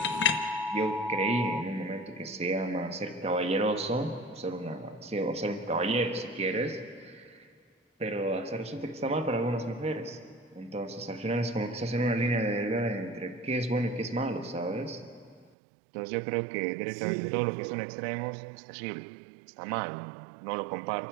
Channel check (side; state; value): left; drops out; at 15.5 s